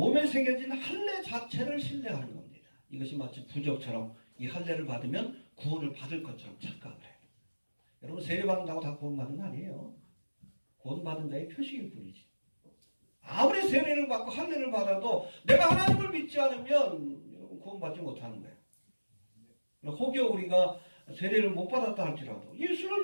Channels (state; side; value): inverted; both; correlation -1.00